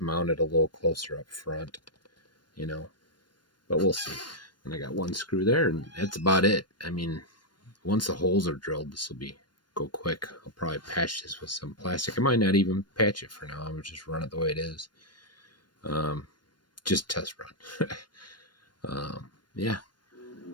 mount it a little closer up front, you know, but we'll see. And I got one screw there, and that's about it. I mean, once the holes are drilled, this will go quick. I'll probably patch this with some plastic. I might not even patch it for now. I'm just run it the way it is. Just test run. Yeah,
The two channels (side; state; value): right; late; 0.71 ms